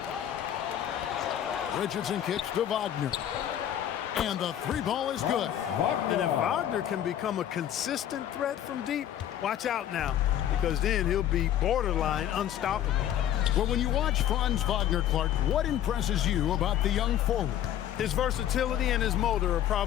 Richardson kicks to Wagner. And the 3 ball is good. And if Wagner can become a consistent threat from deep, watch out now, because then he'll be borderline unstoppable. Well, when you watch Franz Wagner, Clark, what impresses you about the young forward? His versatility and his motor are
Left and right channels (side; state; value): right; quieter; 11.0 dB